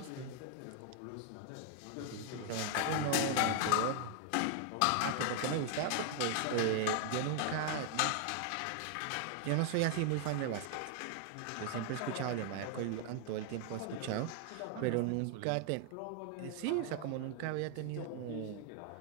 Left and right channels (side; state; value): both; different; correlation 0.00